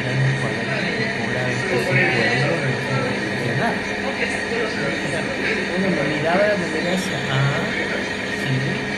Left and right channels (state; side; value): identical; both; correlation 1.00